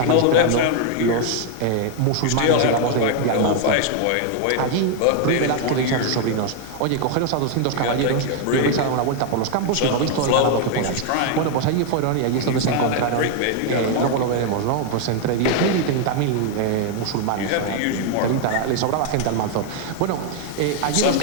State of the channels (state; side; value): different; both; correlation 0.00